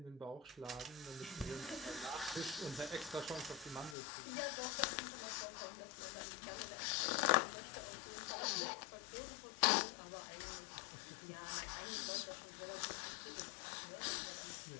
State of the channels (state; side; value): drops out; right; at 4.0 s